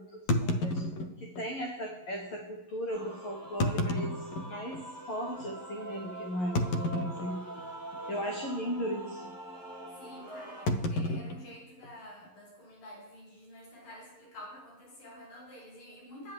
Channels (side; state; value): right; late; 11 ms